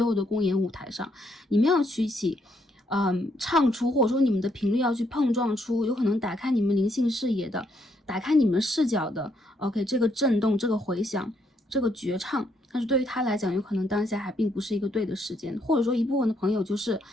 后的公演舞台上，你们要去一起唱出，或者说你们的频率要去碰撞出有可能打开你们灵性视野的，打开你们视角的 OK 这个震动，这个回响，这个绝唱。但是对于他来讲，有可能当下还并不是一个对的时间，或者说一部分的朋友就是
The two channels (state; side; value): normal; both; correlation 0.74